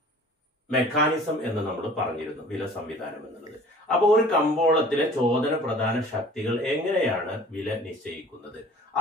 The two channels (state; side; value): normal; both; correlation 0.48